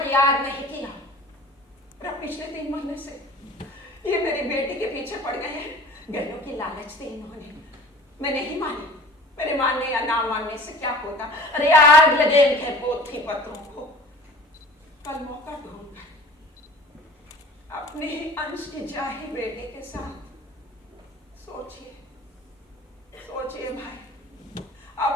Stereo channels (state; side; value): normal; both; correlation 0.44